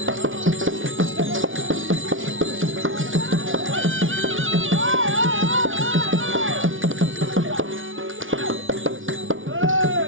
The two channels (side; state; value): left; late; 0.57 ms